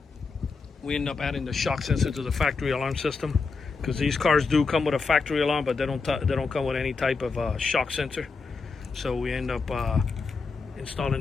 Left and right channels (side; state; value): right; quieter; 4.5 dB